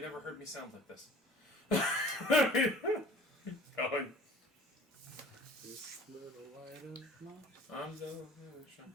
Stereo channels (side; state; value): both; normal; correlation 0.47